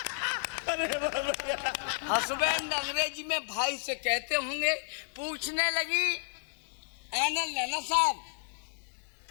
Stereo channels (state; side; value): silent; right; digital silence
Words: हस्बैंड अंग्रेजी में भाई से कहते होंगे। पूछने लगी, नैना साहब